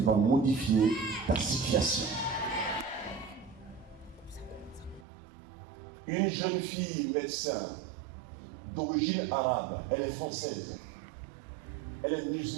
va modifier ta situation. Une jeune fille médecin d'origine arabe, elle est française. Elle est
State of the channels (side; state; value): left; drops out; at 5.1 s